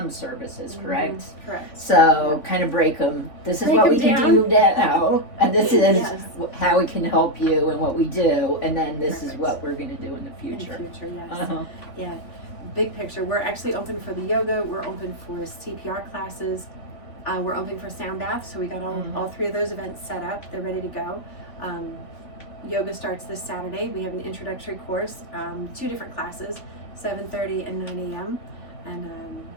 services, correct? Correct. So kind of break them. This is what we can do now, and this is how we can help you and what we do, and then this is what we're going to do in the future. In the future, yes. Yeah. Big picture. We're actually open for the yoga. We're open for CPR classes. We're open for sound baths. So we got all three of those events set up. They're ready to go. Yoga starts this Saturday. We have an introductory course, 2 different classes, 7:30 and 9 a.m. And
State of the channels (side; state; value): right; late; 3.5 ms